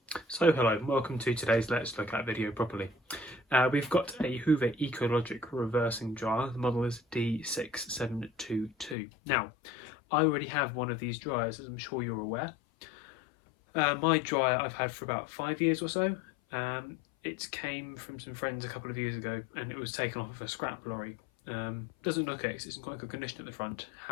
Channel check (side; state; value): right; drops out; at 9.0 s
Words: So hello and welcome to today's Let's Look At video properly. We've got a Hoover Ecologic reversing dryer. The model is D6722. Now, I already have one of these dryers, as I'm sure you're aware. My dryer I've had for about 5 years or so. It came from some friends a couple of years ago and it was taken off of a scrap lorry. Doesn't look it, it's in quite good condition at the front.